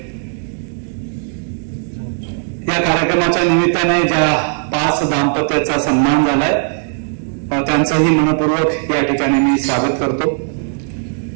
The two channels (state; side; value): silent; left; digital silence